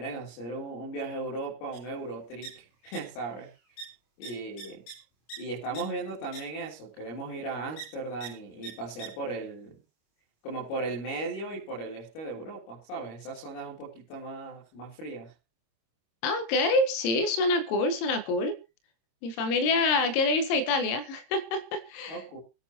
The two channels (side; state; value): right; late; 26 ms